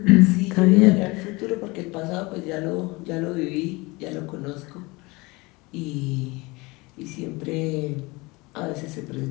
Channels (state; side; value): quieter; right; 24.2 dB